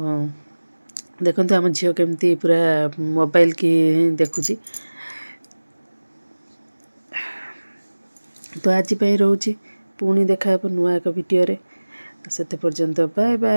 ଦେଖନ୍ତୁ ଆମ ଝିଅ କେମିତି ପୁରା ମୋବାଇଲ କି ଦେଖୁଛି ତ ଆଜି ପାଇଁ ରହୁଛି ପୁଣି ଦେଖା ହେବ ନୂଆ ଏକ ଭିଡ଼ିଓରେ ସେତେ ପର୍ଯ୍ୟନ୍ତ ବାଏ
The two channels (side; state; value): both; inverted; correlation -1.00